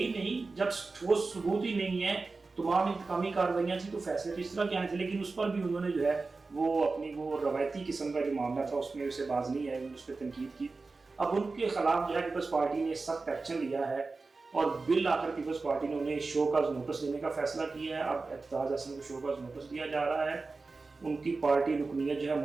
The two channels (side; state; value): left; quieter; 3.9 dB